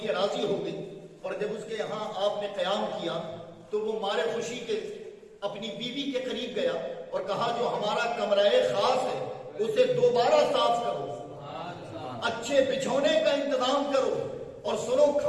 ہے، راضی ہو گئی. اور جب اس کے یہاں آپ نے قیام کیا تو وہ مارے خوشی کے اپنی بیوی کے قریب گیا اور کہا جو ہمارا کمرہ خاص ہے اسے دوبارہ صاف کرو، اچھے بچھونے کا انتظام کرو، اور سنو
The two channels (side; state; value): both; identical; correlation 1.00